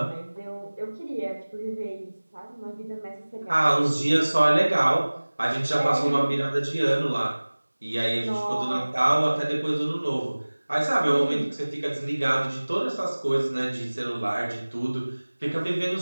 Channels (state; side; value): inverted; both; correlation -1.00